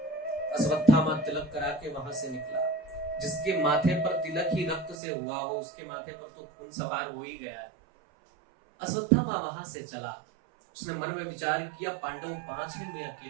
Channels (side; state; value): left; drops out; at 5.0 s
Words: अश्वत्थामा तिलक करा के वहां से निकला। जिसके माथे पर तिलक ही रक्त से हुआ हो उसके माथे पर तो खून सवार हो ही गया है। अश्वत्थामा वहां से चला। उसने मन में विचार किया, पांडव 5 हैं, मैं